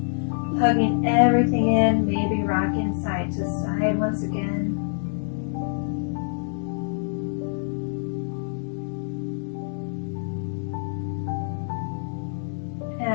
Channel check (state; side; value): silent; right; digital silence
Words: Hugging everything in, maybe rocking side to side once again.